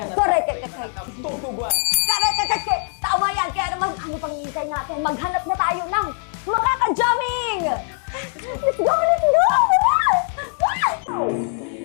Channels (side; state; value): right; silent; 65 dB below the other